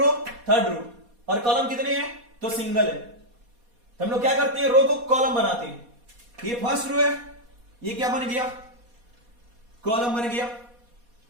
थर्ड रो, और कॉलम कितने हैं, तो सिंगल है। तो हम लोग क्या करते हैं, रो को कॉलम बनाते हैं। ये फर्स्ट रो है, ये क्या बन गया, कॉलम बन गया।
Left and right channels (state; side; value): late; left; 4.2 ms